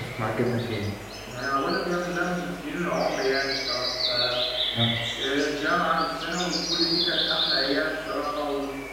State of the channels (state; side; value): identical; both; correlation 1.00